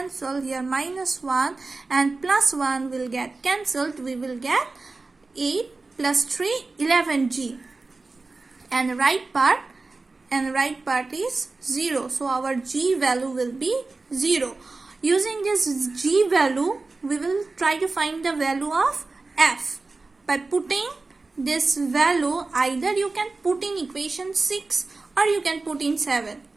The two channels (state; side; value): quieter; left; 3.6 dB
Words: Here minus 1 and plus 1 will get cancelled. We will get 8 plus 3, 11g. And the right part is 0. So our g value will be 0. Using this g value, we will try to find the value of f. By putting this value, either you can put in equation 6 or you can put in 7.